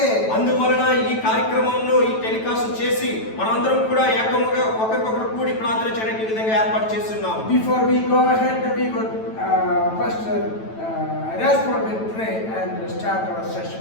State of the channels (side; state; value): right; late; 9.1 ms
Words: అందువలన ఈ కార్యక్రమంలో ఈ టెలికాస్ట్ చేసి మనమందరం కూడా ఏకముగా ఒకరికొకరు కూడి ప్రార్థన చేయడానికి ఈ విధంగా ఏర్పాటు చేస్తున్నాం. Before we go ahead, we would Pastor Rasper will pray and start our session.